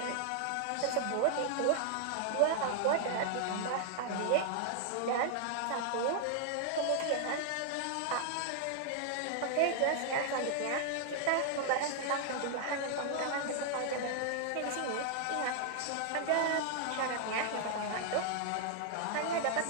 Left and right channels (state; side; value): different; both; correlation 0.00